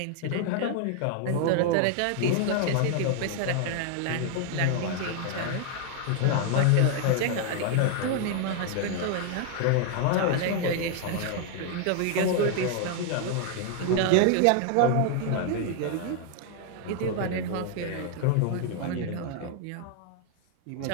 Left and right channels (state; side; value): different; both; correlation 0.00